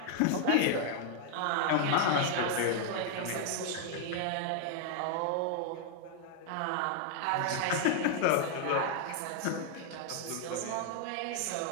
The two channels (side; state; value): both; different; correlation 0.00